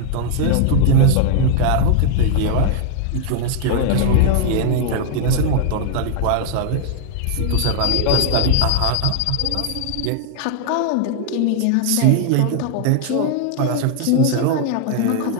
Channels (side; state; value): both; different; correlation -0.01